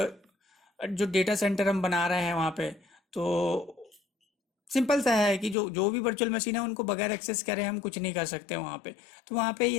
जो डेटा सेंटर हम बना रहे हैं वहाँ पे, तो सिंपल सा है कि जो जो भी वर्चुअल मशीन है उनको बगैर एक्सेस करे हम कुछ नहीं कर सकते वहाँ पे। तो वहाँ पे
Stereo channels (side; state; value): right; drops out; at 5.6 s